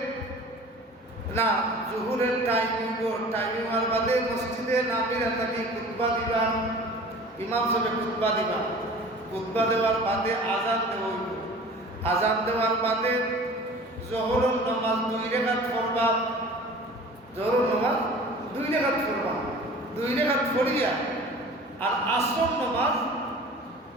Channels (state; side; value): normal; both; correlation 0.43